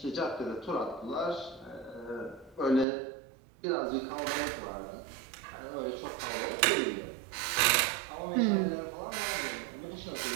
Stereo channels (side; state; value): left; drops out; at 2.9 s